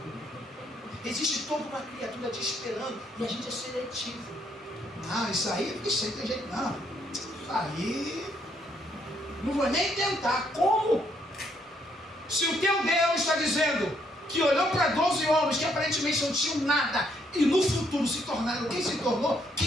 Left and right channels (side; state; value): both; normal; correlation 0.71